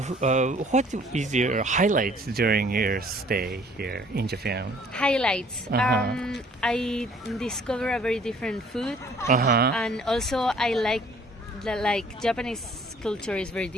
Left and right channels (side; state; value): both; normal; correlation 0.57